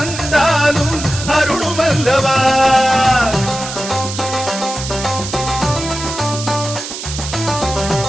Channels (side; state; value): right; noise; hiss, 8 dB below the sound